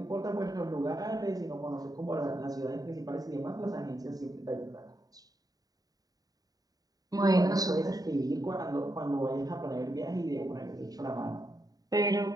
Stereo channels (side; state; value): left; late; 0.18 ms